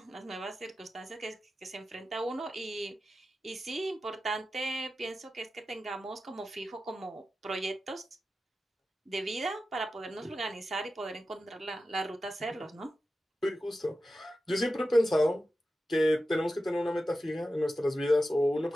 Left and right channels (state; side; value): normal; both; correlation 0.92